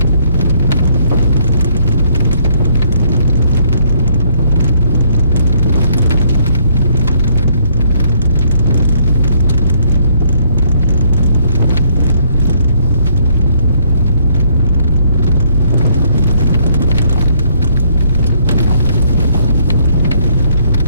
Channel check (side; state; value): both; inverted; correlation -0.68